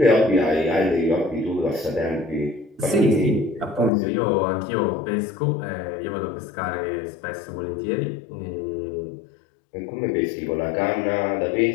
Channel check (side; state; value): right; drops out; at 3.9 s